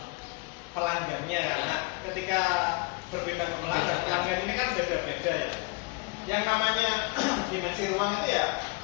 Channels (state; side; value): quieter; right; 29.6 dB